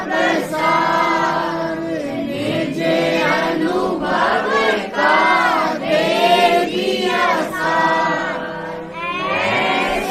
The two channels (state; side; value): identical; both; correlation 1.00